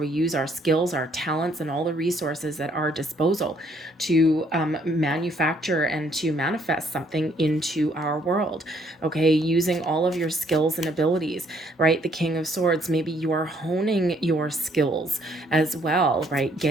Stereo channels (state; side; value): normal; both; correlation 0.67